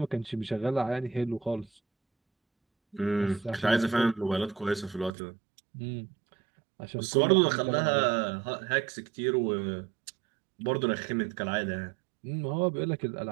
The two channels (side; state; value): left; drops out; at 5.1 s